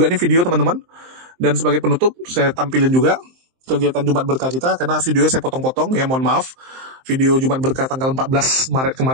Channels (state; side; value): late; left; 23 ms